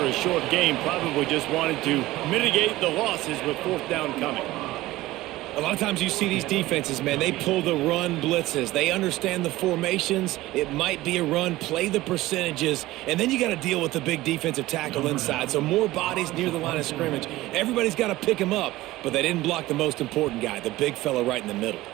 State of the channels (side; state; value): left; quieter; 17.6 dB